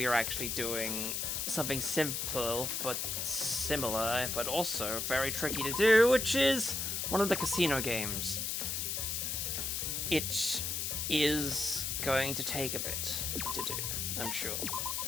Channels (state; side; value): noise; left; hiss, 1 dB below the sound